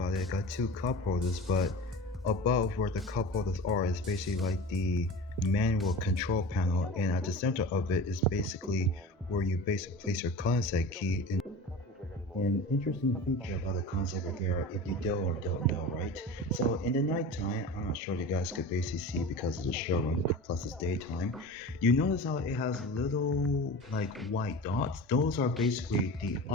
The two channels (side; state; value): both; normal; correlation 0.34